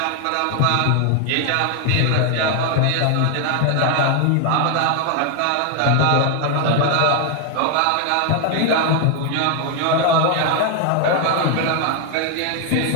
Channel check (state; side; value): different; both; correlation 0.00